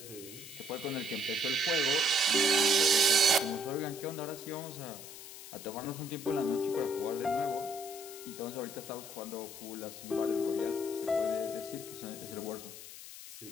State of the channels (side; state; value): left; noise; hiss, 13 dB below the sound